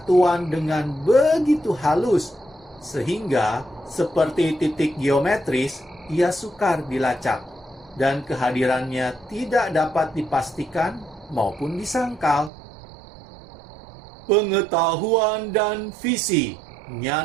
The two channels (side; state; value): left; drops out; at 12.5 s